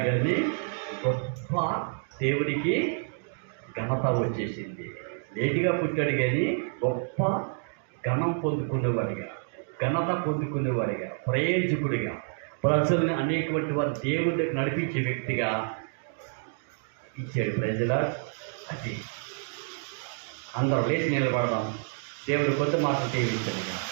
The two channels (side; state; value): left; silent; 59 dB below the other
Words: కానీ గొప్ప దేవుడికి ఘనత వచ్చేసింది. లేటుగా పుట్టాడు కానీ గొప్ప ఘనం పొందుకునేవాడిగా, ఘనత పొందుకునేవాడిగా, ప్రయోజకుడిగా, ప్రజల్ని అనేకటువంటి వారు దేవుడి దగ్గర నడిపించే వ్యక్తిగా ఇచ్చాడు. ప్రజల అది అందరూ లేచి నిలబడదాం. దేవుడు కొత్త మాటలు దీవించాడు